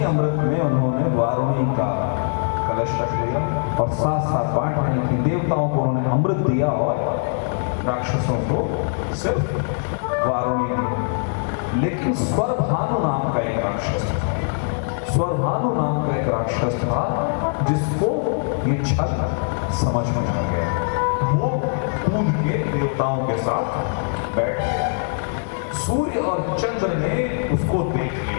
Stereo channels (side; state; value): right; silent; digital silence